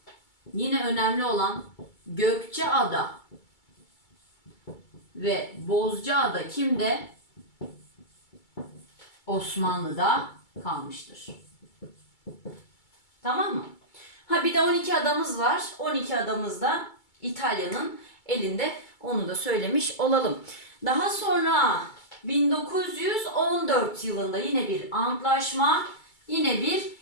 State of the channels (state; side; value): late; right; 2.3 ms